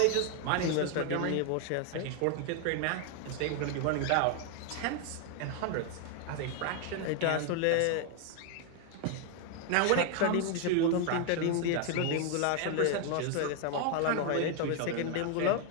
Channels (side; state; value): both; different; correlation 0.01